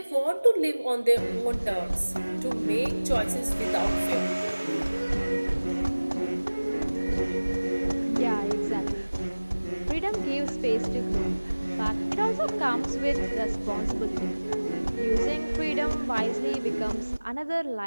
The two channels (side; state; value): both; inverted; correlation -1.00